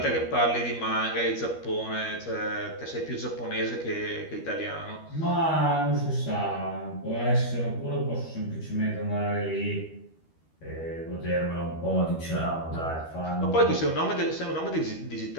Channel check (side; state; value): right; late; 13 ms